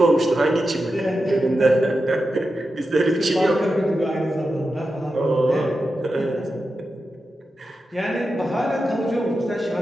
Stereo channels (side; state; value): both; normal; correlation 0.90